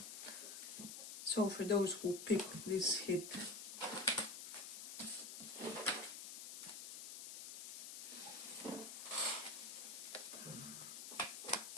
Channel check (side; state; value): left; noise; hiss, 8 dB below the sound